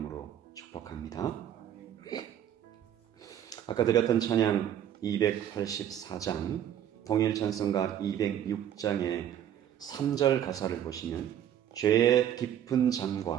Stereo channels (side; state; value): left; quieter; 10.3 dB